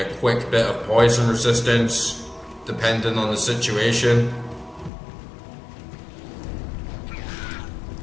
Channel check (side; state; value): right; drops out; at 4.9 s